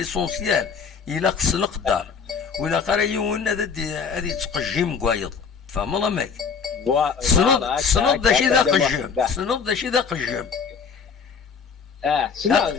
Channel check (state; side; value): quieter; right; 5.9 dB